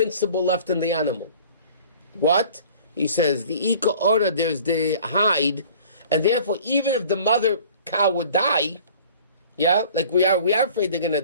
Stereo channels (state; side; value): inverted; both; correlation -0.48